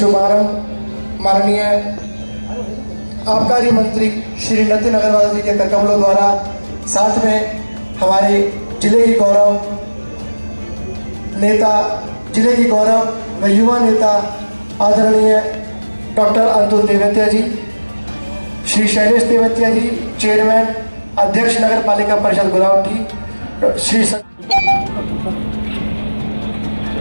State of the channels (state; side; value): inverted; both; correlation -1.00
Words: शुभारंभ माननीय आबकारी मंत्री श्री नितिन अग्रवाल जी के करकमलों द्वारा, साथ में हमारे जिले की गौरव नेता, जिले की गौरव व युवा नेता आदरणीय डॉक्टर अतुल तेवतिया जी, श्री शैलेश तेवतिया जी चेयरमैन अध्यक्ष नगर पालिका परिषद गुलावटी, श्री